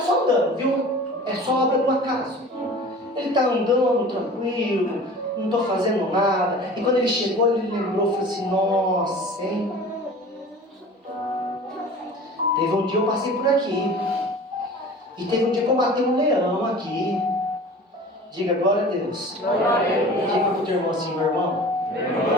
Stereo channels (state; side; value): normal; both; correlation 0.41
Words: só andando, viu? É só obra do acaso. Ele está andando tranquilo, não estou fazendo nada. E quando ele chegou, ele lembrou, falou assim: nossa, hein? Teve um dia eu passei por aqui. E teve um dia que eu matei um leão aqui. Diga glória a Deus. Glória a Deus. Diga para o teu irmão assim: meu irmão,